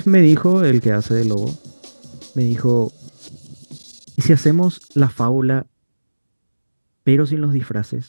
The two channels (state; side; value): inverted; both; correlation -1.00